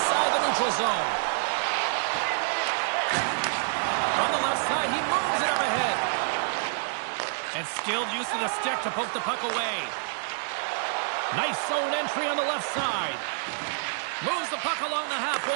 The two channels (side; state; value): left; silent; digital silence